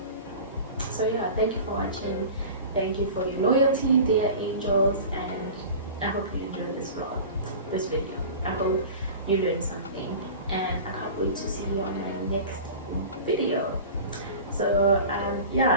yeah, thank you for watching. Thank you for your loyalty, dear angels, and I hope you enjoyed this vlog, this video. I hope you learned something, and I can't wait to see you on my next video. So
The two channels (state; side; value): inverted; both; correlation -0.36